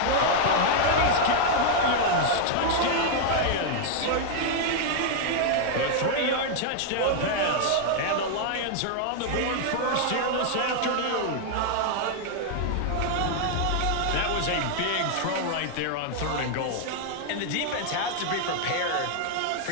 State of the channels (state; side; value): different; both; correlation 0.00